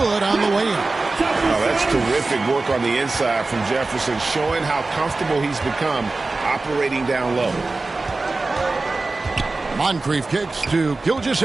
on the way in. Oh, that's terrific work on the inside from Jefferson, showing how comfortable he's become operating down low. Moncrief kicks to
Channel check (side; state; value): left; quieter; 3.4 dB